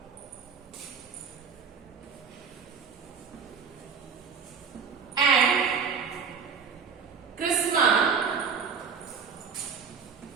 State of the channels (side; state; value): left; quieter; 6.0 dB